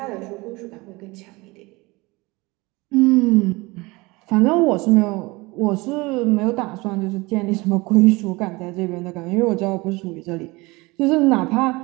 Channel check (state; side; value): quieter; left; 23.2 dB